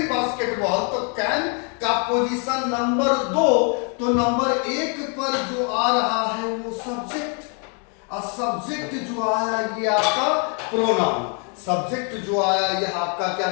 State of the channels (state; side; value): quieter; right; 37.6 dB